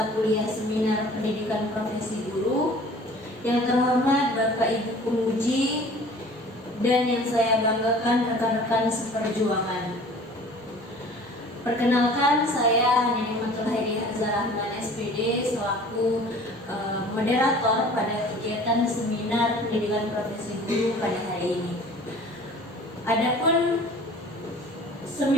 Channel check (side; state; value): both; normal; correlation 0.47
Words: kuliah seminar pendidikan profesi guru. Yang terhormat Bapak Ibu penguji dan yang saya banggakan rekan-rekan seperjuangan. Perkenalkan, saya Nimatul Hairi Hazarahman SPD selaku moderator pada kegiatan seminar pendidikan profesi guru pada hari ini. Adapun